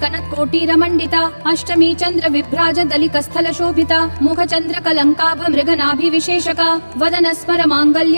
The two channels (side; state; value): both; inverted; correlation -1.00